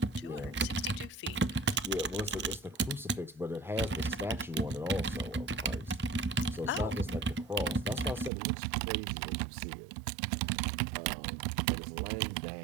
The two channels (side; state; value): left; drops out; at 8.3 s